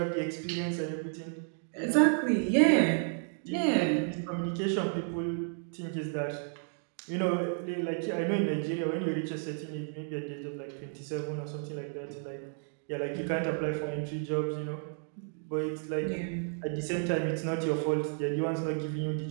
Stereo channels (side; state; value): left; silent; 56 dB below the other